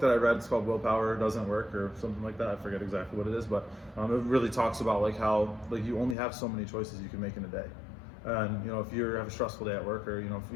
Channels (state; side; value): drops out; right; at 6.2 s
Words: that I read. It's called Willpower Doesn't Work or something like that. I forget exactly what it is, but it really talks about like how like you only have so many choices you can make in a day. And you know, if you have a stressful day at work, or you know, if